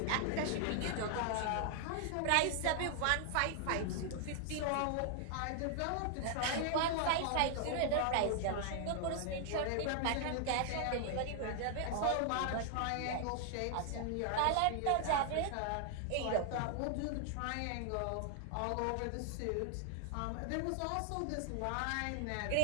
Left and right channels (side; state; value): both; different; correlation 0.00